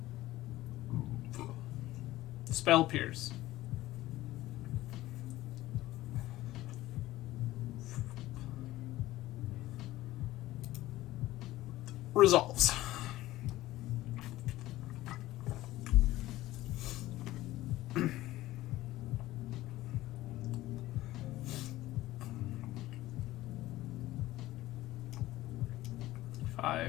Spell Pierce. Resolves.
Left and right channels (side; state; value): right; quieter; 16.4 dB